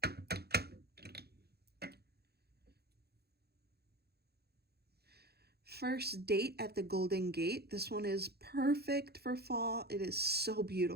First Date at the Golden Gate. This one is perfect for fall. It is so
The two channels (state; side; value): late; left; 0.47 ms